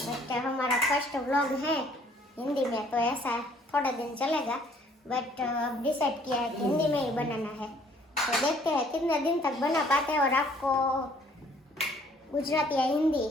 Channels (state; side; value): normal; both; correlation 0.60